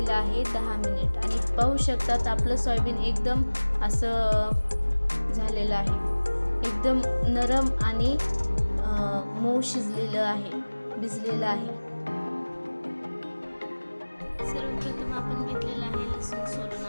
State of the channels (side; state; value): both; inverted; correlation -1.00